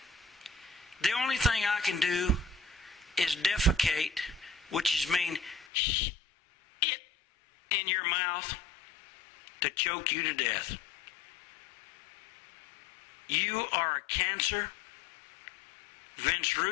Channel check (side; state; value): right; drops out; at 5.7 s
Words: the only thing I can do is defecate, which is mean it in your mouth to choke you to death. You are a cancer. Vince